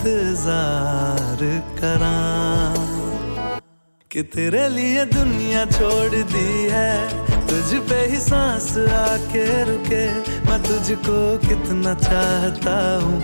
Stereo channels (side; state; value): both; inverted; correlation -1.00